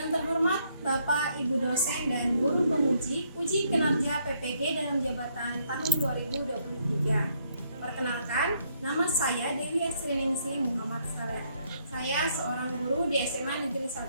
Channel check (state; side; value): inverted; both; correlation -0.71